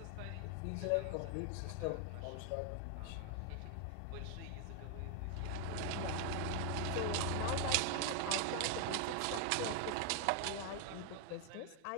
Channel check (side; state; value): both; different; correlation 0.00